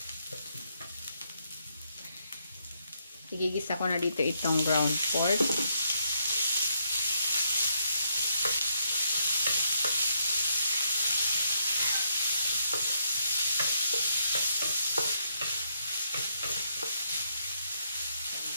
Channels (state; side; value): inverted; both; correlation -0.75